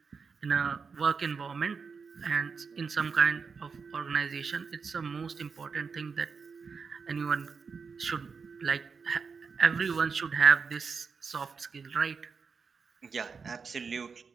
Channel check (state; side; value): quieter; left; 5.4 dB